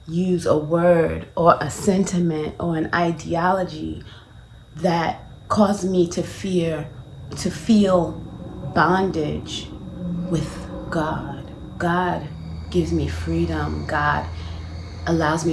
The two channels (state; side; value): identical; both; correlation 1.00